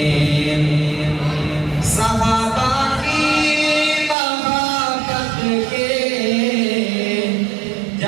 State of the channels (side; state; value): left; drops out; at 4.2 s